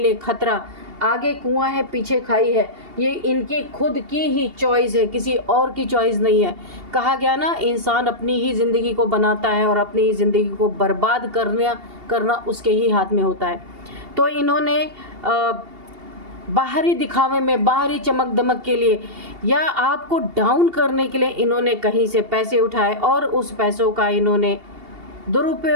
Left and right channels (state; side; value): late; left; 2.8 ms